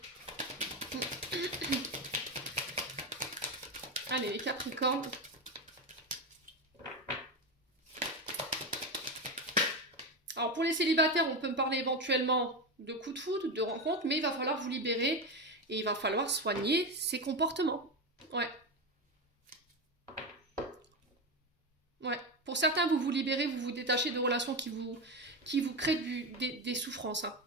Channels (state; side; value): normal; both; correlation 0.16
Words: Allez, les Capricornes. Alors pour les célibataires, on peut me parler éventuellement de coups de foudre, de rencontres, mais il va falloir vous libérer et il va falloir soigner ces comportements. Ouais. Ouais. Pour certains, vous vous libérez, vous vous détachez de relations qui vous créent des souffrances. Hein.